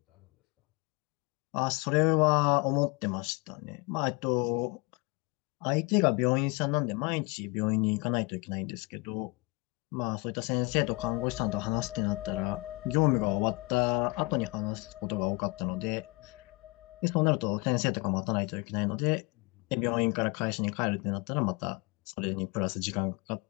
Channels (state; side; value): quieter; right; 26.8 dB